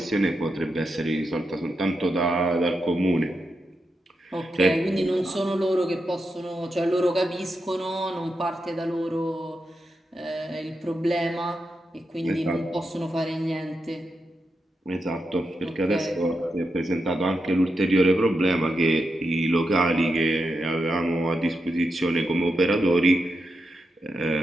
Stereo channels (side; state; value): both; normal; correlation 0.86